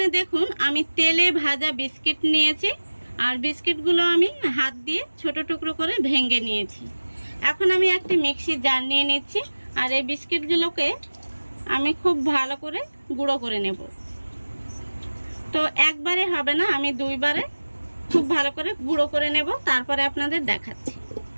দেখুন আমি তেলে ভাজা বিস্কিট নিয়েছি, আর বিস্কিটগুলো আমি হাত দিয়ে ছোট টুকরো করে ভেঙে নিয়েছি। এখন আমি একটি মিক্সি জার নিয়ে নিচ্ছি, আর এই বিস্কিটগুলোকে আমি খুব ভালো করে গুঁড়ো করে নেব। তো একবারে হবে না, আমি দুইবারে খুব ভালো করে গুঁড়ো করে নেব, তারপরে আপনাদের দেখাচ্ছি।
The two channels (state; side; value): inverted; both; correlation -1.00